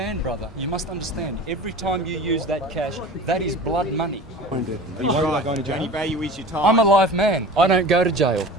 brother. You must understand. Every time you use that cash, that is blood money. Are you worried about going to jail? Only value is your time. I'm a live man. I don't go to jail.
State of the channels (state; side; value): normal; both; correlation 0.37